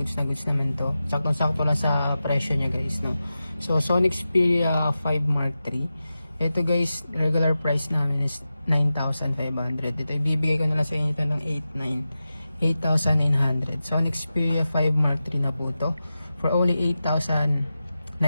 na goods naman to. Saktong-sakto lang sa presyo niya guys, no? So Sony Xperia 5 Mark III. Ito guys, regular price namin is 9,500. Ito ibibigay ko na lang sa inyo ito ng 8,900. Sony Xperia 5 Mark III na po to for only 8,900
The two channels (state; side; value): inverted; both; correlation -0.93